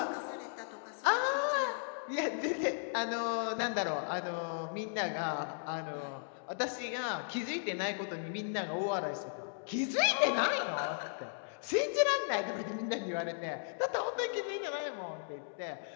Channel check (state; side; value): silent; right; digital silence